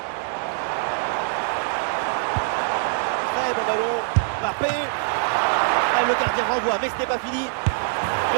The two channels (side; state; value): left; silent; 63 dB below the other